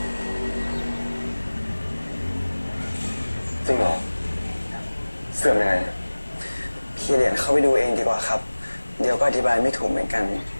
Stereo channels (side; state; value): both; inverted; correlation -1.00